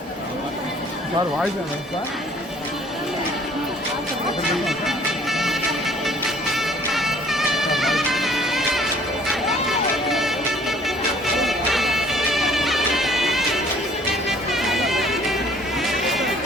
సార్ వాయిస్ సార్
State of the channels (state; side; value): normal; both; correlation 0.55